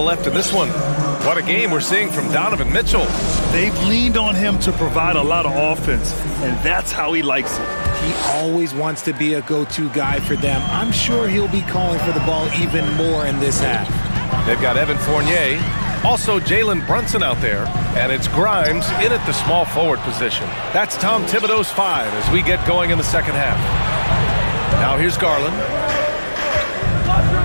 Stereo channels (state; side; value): inverted; both; correlation -1.00